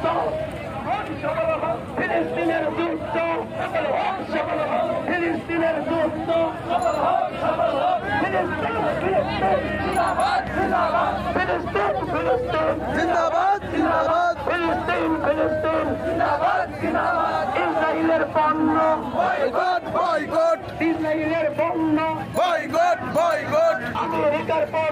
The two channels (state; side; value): identical; both; correlation 1.00